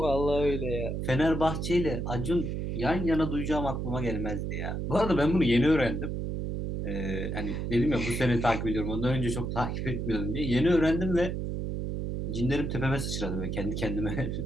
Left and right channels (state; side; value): noise; right; hum, 3 dB below the sound